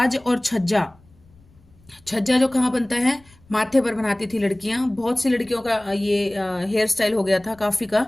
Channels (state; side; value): noise; left; rumble, 28 dB below the sound